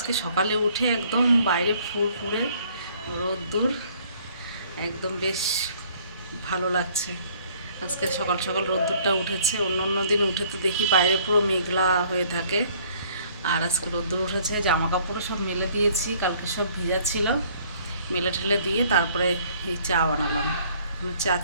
সকালে উঠে একদম বাইরে ফুরফুরে রোদ্দুর, একদম বেশ ভালো লাগছে। আজকে সকাল সকাল রোদ্দুরটা উঠেছে। অন্য অন্য দিন উঠে তো দেখি বাইরে পুরো মেঘলা হয়ে থাকে, আর আজকে রোদ্দুর উঠেছে। জামা কাপড়ও সব মেলে দিয়েছি, কালকে সব ভিজা ছিল, মেলে ঠেলে দিয়ে তারপরে এই চা বানালাম। চা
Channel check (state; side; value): inverted; both; correlation -0.59